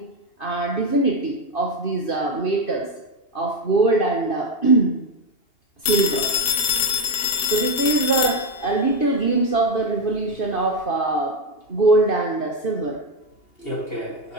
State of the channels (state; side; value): late; right; 2.8 ms